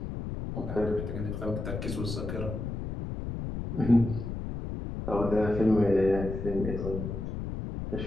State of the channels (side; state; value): left; noise; rumble, 5 dB below the sound